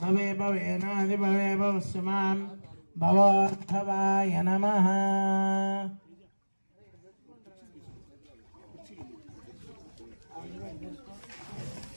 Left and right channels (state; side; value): inverted; both; correlation -1.00